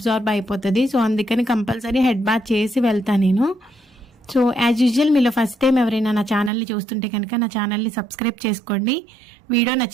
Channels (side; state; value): left; drops out; at 6.5 s